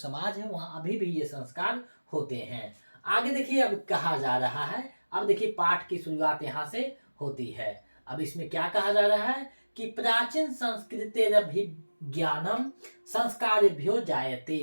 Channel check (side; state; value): both; inverted; correlation -1.00